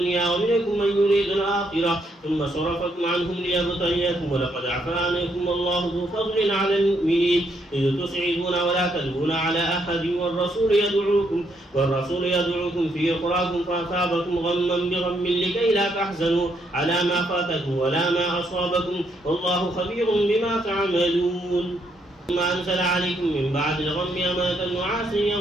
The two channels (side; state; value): both; normal; correlation 0.74